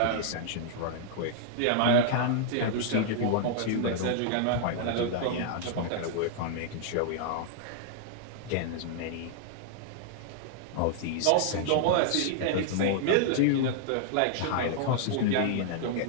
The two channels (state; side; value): different; both; correlation -0.01